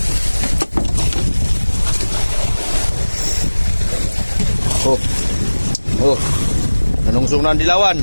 Oh. Nanungsong na ang dilawan.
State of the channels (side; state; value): both; inverted; correlation -1.00